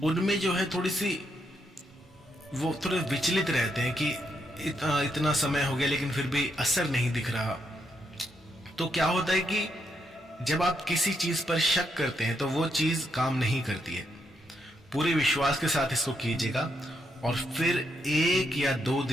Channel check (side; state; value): both; normal; correlation 0.79